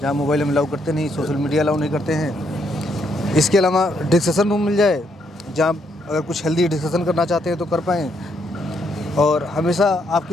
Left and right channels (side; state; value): both; normal; correlation 0.74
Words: जहाँ मोबाइल हम अलाउ करते नहीं, सोशल मीडिया अलाउ नहीं करते हैं। इसके अलावा डिस्कशन रूम मिल जाए जहाँ अगर कुछ हेल्दी डिस्कशन करना चाहते हैं तो कर पाएँ, और हमेशा